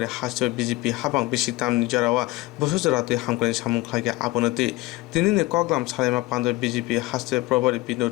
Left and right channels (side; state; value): right; quieter; 19.6 dB